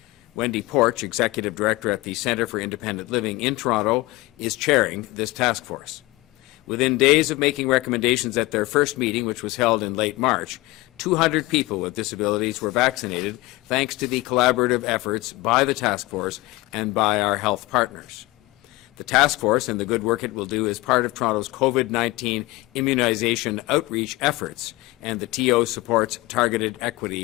Wendy Porch, Executive Director at the Centre for Independent Living in Toronto, is chairing this task force. Within days of making recommendations at their first meeting, which was held in late March, 200 people with disabilities were vaccinated thanks to the collaborative efforts by the task force and by our health partners. The task force and the good work it will do is part of Toronto's COVID-19 immunization outreach efforts, and the TO supports Targeted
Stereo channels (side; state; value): right; quieter; 20.8 dB